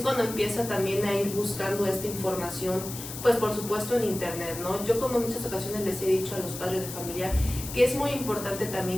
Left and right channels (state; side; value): noise; left; hiss, 10 dB below the sound